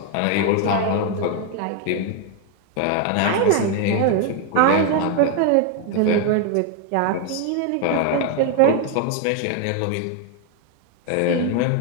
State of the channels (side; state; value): both; different; correlation 0.01